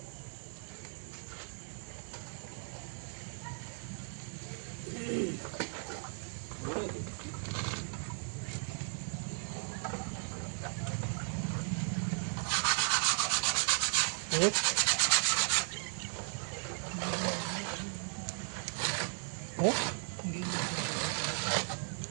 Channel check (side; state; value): left; silent; 54 dB below the other